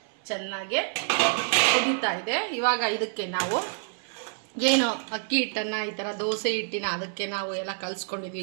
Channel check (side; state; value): left; silent; 60 dB below the other